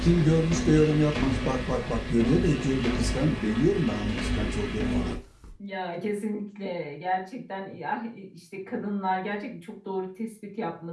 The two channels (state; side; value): identical; both; correlation 1.00